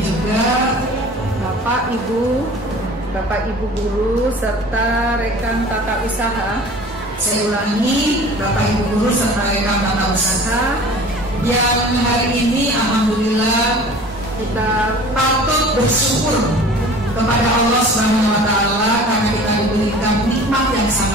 juga Bapak Ibu guru serta rekan tata usaha. Saya ulangi, Bapak Ibu guru serta rekan tata usaha yang hari ini alhamdulillah kita patut bersyukur kepada Allah Subhanahu wa taala karena kita diberikan nikmat yang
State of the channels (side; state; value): both; normal; correlation 0.43